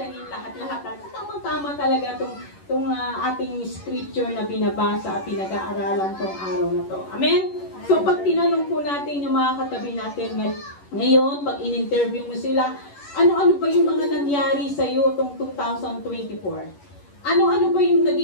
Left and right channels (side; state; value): right; late; 11 ms